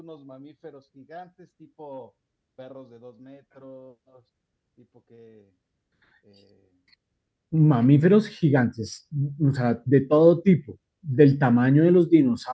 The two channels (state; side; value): identical; both; correlation 1.00